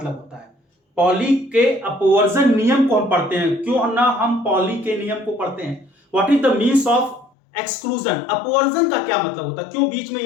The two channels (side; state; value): right; drops out; at 7.3 s